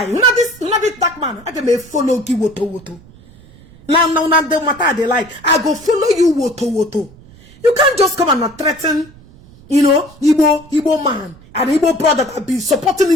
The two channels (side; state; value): right; noise; rumble, 23 dB below the sound